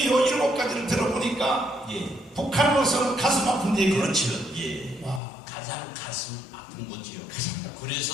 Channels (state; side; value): drops out; right; at 5.2 s